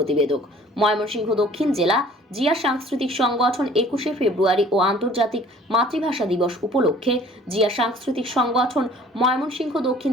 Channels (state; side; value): normal; both; correlation 0.52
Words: ময়মনসিংহ দক্ষিণ জেলা জিয়া সাংস্কৃতিক সংগঠন 21শে ফেব্রুয়ারি ও আন্তর্জাতিক মাতৃভাষা দিবস উপলক্ষে জিয়া সাংস্কৃতিক সংগঠন ময়মনসিংহ দক্ষিণ